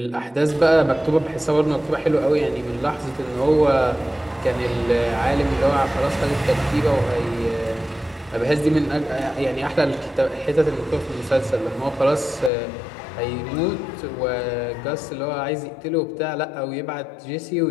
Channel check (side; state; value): right; drops out; at 12.5 s